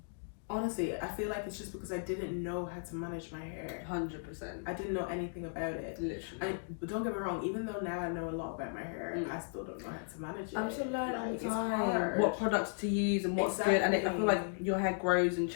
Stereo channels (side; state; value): right; silent; digital silence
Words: honestly, I feel like it's just because I didn't know how to manage my hair. 100%. I didn't know anything about it. Literally. But don't get me wrong, even though now I know a lot about my hair, I still don't know how to manage it. Like, it's hard. What products to use and what's good. And I feel like your hair grows and